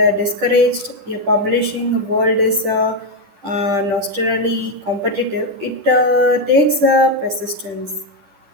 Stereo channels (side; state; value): left; late; 10 ms